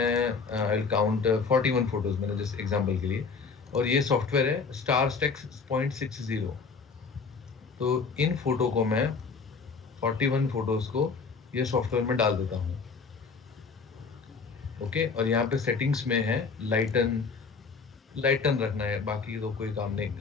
आई विल काउंट 41 फोटोज मैंने जस्ट एग्जांपल के लिए। और ये सॉफ्टवेयर है स्टार स्टेक्स 0.60। तो इन फोटो को मैं 41 फोटोज को ये सॉफ्टवेयर में डाल देता हूँ। ओके, और यहाँ पे सेटिंग्स में है लाइटन रखना है, बाकी तो कोई काम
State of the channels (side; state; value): right; quieter; 5.0 dB